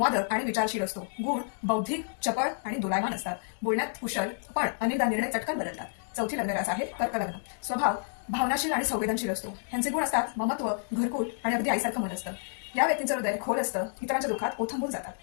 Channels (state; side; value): silent; right; digital silence